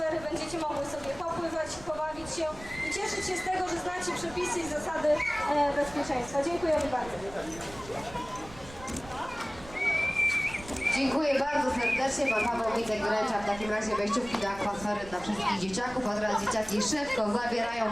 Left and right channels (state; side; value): noise; right; rumble, 17 dB below the sound